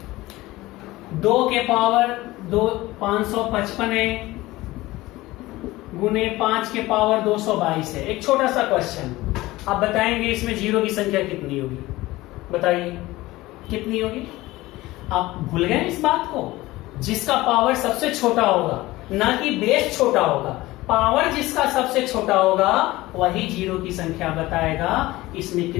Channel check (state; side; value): quieter; right; 18.6 dB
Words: दो के पावर 555 है गुने 5 के पावर 222 है। एक छोटा सा क्वेश्चन, आप बताएंगे इसमें जीरो की संख्या कितनी होगी? बताइए कितनी होगी? आप भूल गए इस बात को? जिसका पावर सबसे छोटा होगा, ना कि बेस छोटा होगा, पावर जिसका सबसे छोटा होगा वही जीरो की संख्या बताएगा। इसमें